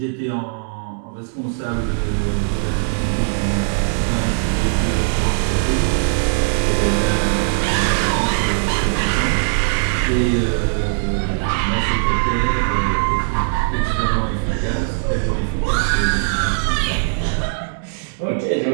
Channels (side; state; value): left; silent; digital silence